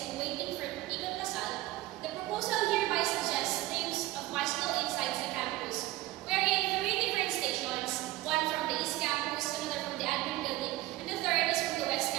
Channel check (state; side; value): quieter; left; 17.4 dB